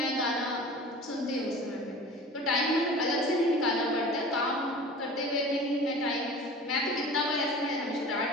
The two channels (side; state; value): both; normal; correlation 0.39